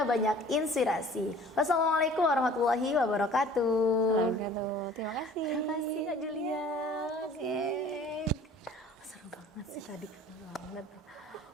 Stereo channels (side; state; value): both; normal; correlation 0.49